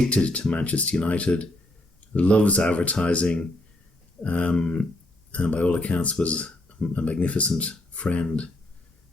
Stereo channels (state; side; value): normal; both; correlation 0.74